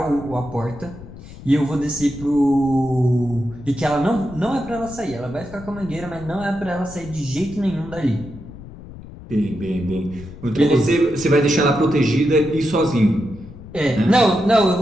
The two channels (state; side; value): noise; left; rumble, 15 dB below the sound